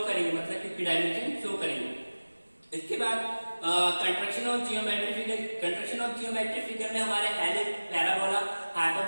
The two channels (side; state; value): both; inverted; correlation -1.00